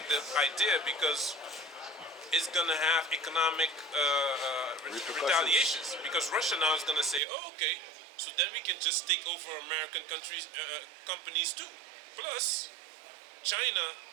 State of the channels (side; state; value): left; drops out; at 7.2 s